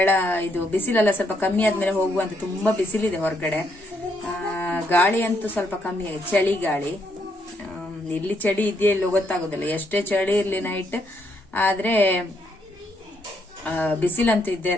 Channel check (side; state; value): both; normal; correlation 0.75